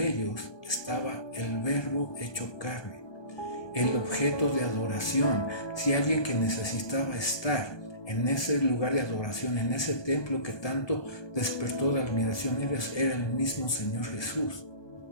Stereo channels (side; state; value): right; late; 1.2 ms